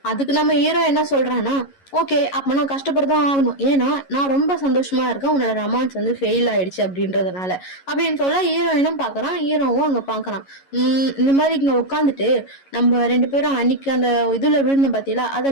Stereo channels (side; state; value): right; late; 11 ms